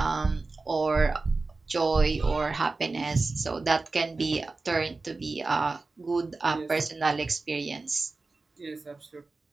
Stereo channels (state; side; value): quieter; left; 3.7 dB